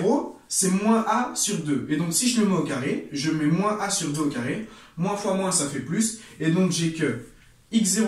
c'est moins a sur 2. Et donc si je le mets au carré, je mets moins a sur 2 au carré, moins fois moins, ça fait plus, et donc j'ai que x0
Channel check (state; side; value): identical; both; correlation 1.00